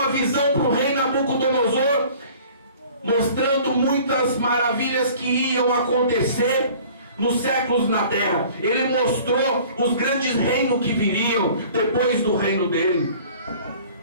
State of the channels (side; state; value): both; inverted; correlation -0.48